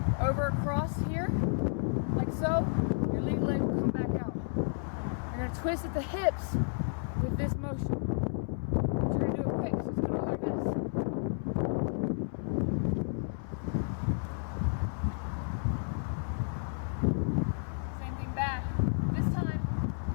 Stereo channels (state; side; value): silent; right; 57 dB below the other